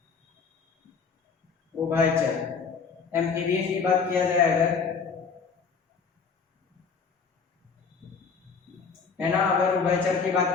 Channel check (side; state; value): right; quieter; 5.5 dB